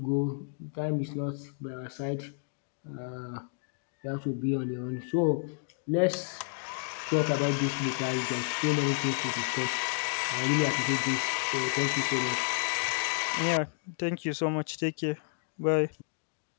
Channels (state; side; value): silent; right; digital silence